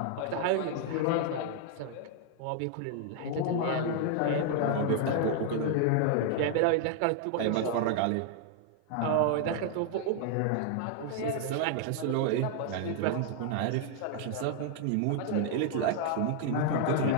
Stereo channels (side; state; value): both; different; correlation 0.00